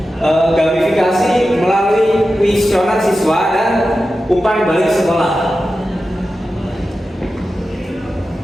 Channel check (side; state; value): both; normal; correlation 0.92